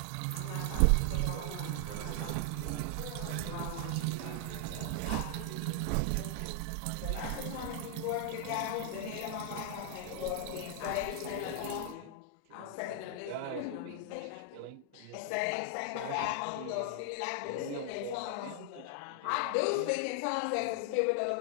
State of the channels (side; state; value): both; different; correlation 0.00